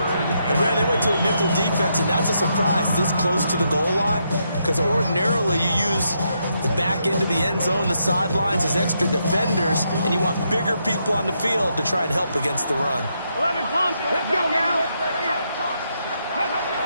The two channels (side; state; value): both; inverted; correlation -0.79